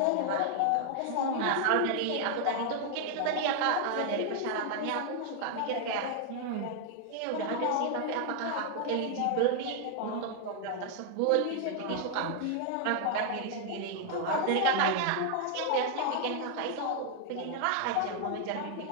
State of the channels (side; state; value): both; different; correlation 0.00